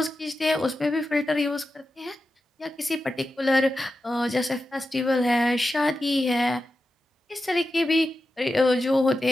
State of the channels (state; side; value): normal; both; correlation 0.91